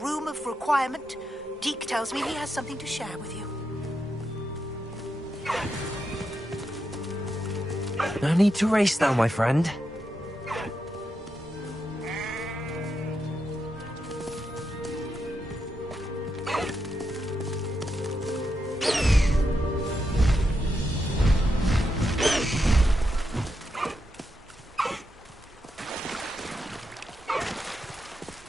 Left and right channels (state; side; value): normal; both; correlation 0.84